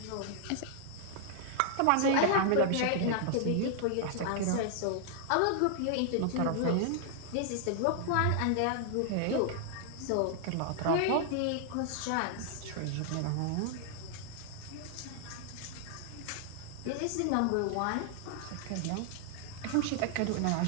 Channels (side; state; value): both; different; correlation 0.00